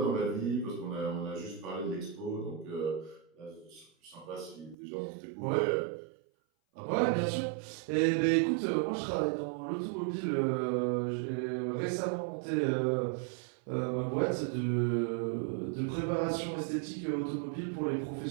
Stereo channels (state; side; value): drops out; left; at 4.8 s